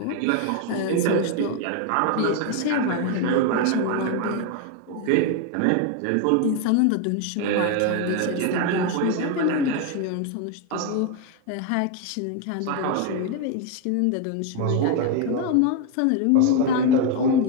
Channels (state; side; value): different; both; correlation 0.01